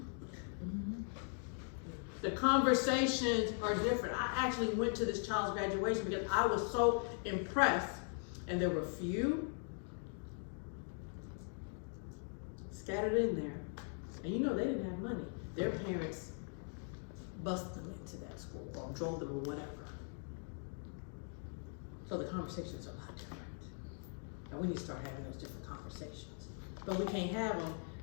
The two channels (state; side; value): silent; right; 51 dB below the other